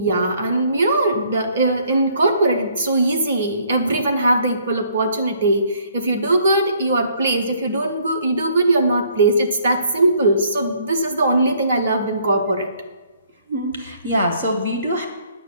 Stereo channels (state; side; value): inverted; both; correlation -0.64